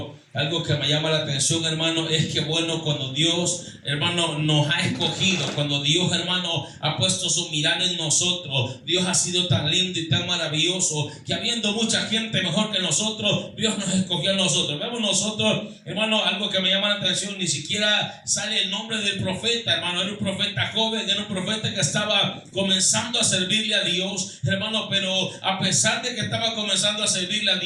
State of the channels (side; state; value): both; identical; correlation 1.00